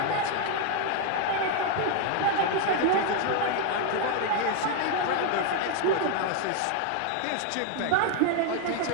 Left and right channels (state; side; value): different; both; correlation 0.00